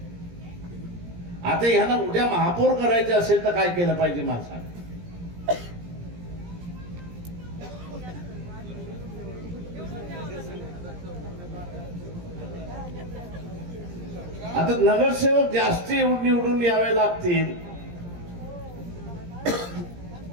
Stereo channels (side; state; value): left; late; 17 ms